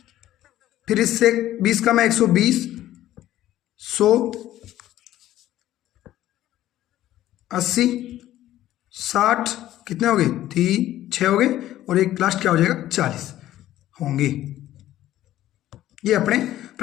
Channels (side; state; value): right; quieter; 13.7 dB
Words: फिर इससे 20 कम है 120, 100, 80, 60, कितने हो गए 3 6 हो गए, और एक लास्ट क्या हो जाएगा 40 होंगे। ये अपने